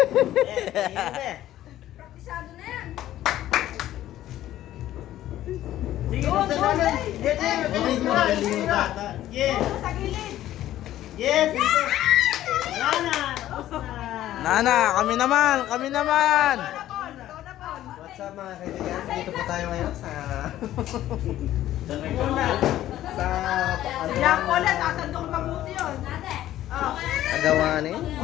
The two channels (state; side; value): quieter; right; 13.4 dB